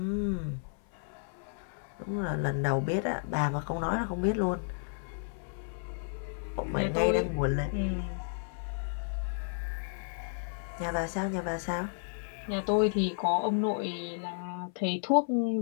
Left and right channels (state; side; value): silent; right; 56 dB below the other